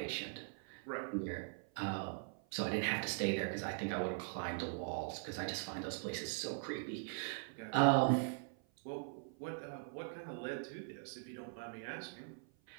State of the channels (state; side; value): silent; left; 50 dB below the other